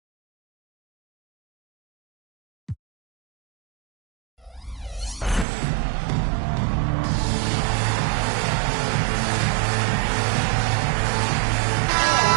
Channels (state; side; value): drops out; left; at 5.5 s